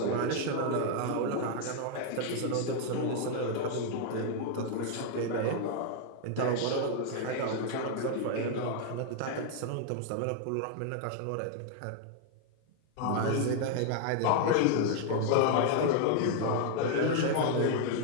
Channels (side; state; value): both; different; correlation 0.00